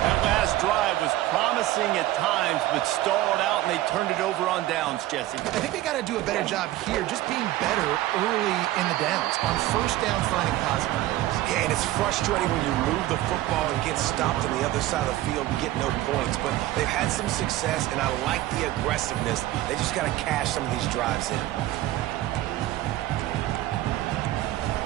That last drive was promising at times, but stalled out, and they turned it over on downs, Jesse. I think they got to do a better job here, just being better early in the downs. On 1st down, finding positive plays. Yeah, and it's frustrating when you move the football and get stopped on the other side of the field and get no points. But they've had some success, and I like the aggressiveness. They just got to cash some of these drives in.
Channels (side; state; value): left; quieter; 15.4 dB